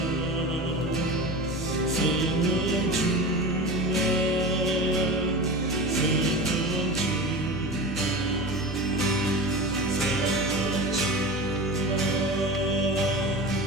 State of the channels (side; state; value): both; normal; correlation 0.30